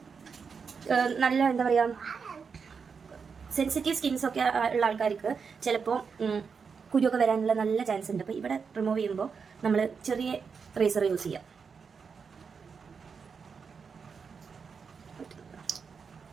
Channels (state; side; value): quieter; left; 5.8 dB